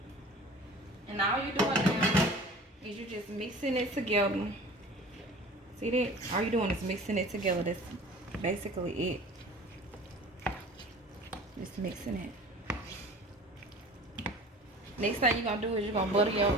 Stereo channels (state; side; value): normal; both; correlation 0.42